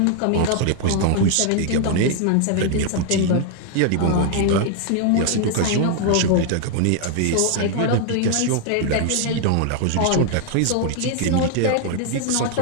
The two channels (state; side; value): different; both; correlation 0.00